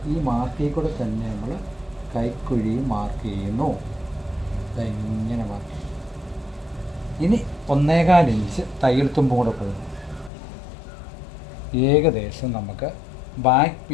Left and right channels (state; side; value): drops out; right; at 10.3 s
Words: ഈ മാർക്കിൽ കൂടെ തന്നെ നമ്മൾ കൈക്കുഴിയും മാർക്ക് ചെയ്യുന്നു. ഇങ്ങനെ മാർക്ക് ചെയ്യും. ഇനി 1.25 ഇഞ്ച് തയ്യൽ തുമ്പും കൂടെ പോകുന്നു. ഏകദേശം നമുക്ക് ബാക്ക്